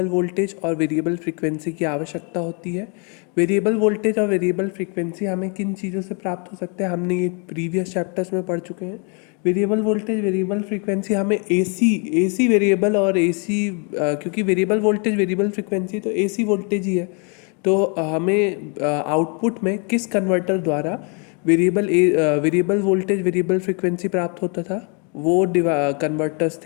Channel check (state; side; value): quieter; right; 36.7 dB